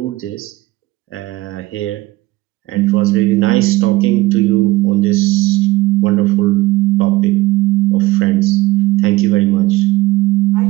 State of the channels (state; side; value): quieter; left; 18.7 dB